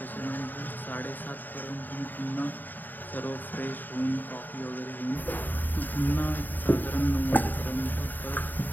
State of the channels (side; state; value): right; late; 0.089 ms